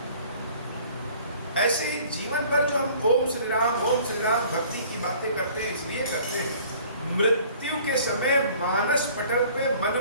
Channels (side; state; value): both; inverted; correlation -0.52